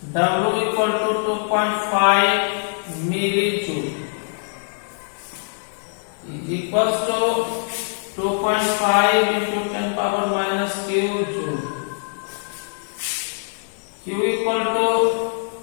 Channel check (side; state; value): right; silent; digital silence